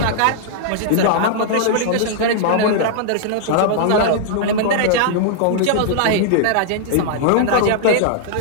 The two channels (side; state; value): both; different; correlation -0.01